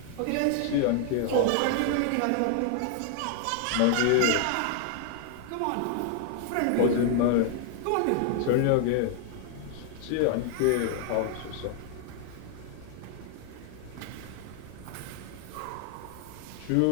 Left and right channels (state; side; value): different; both; correlation 0.00